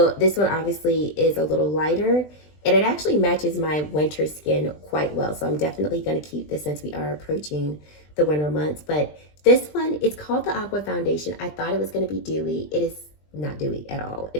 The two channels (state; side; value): late; right; 20 ms